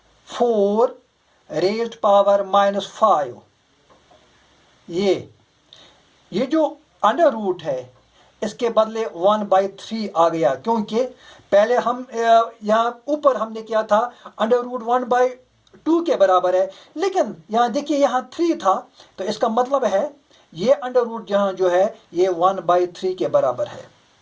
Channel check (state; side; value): identical; both; correlation 1.00